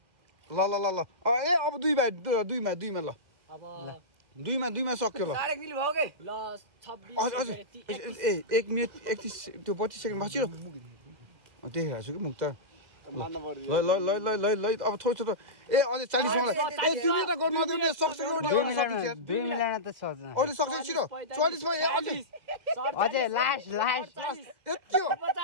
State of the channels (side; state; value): left; late; 2.0 ms